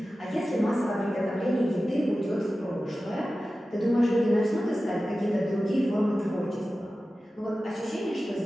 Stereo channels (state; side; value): normal; both; correlation 0.95